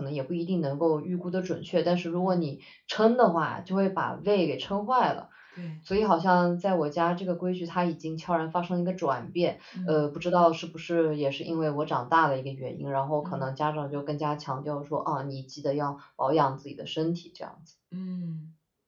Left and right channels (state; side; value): identical; both; correlation 1.00